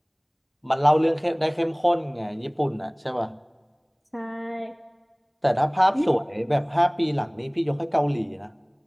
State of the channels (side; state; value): both; identical; correlation 1.00